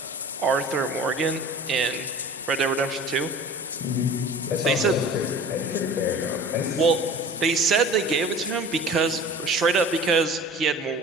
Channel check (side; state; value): both; normal; correlation 0.40